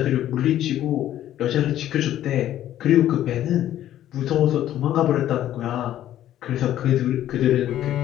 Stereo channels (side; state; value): right; quieter; 12.3 dB